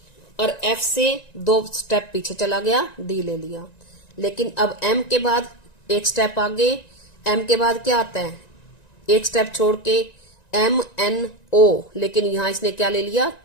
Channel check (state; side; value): late; right; 1.9 ms